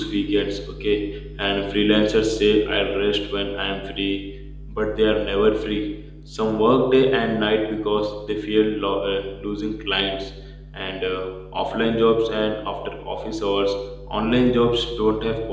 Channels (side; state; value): both; identical; correlation 1.00